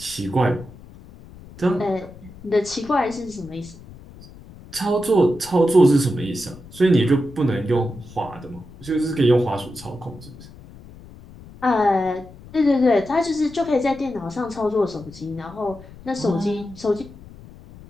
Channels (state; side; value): noise; left; rumble, 19 dB below the sound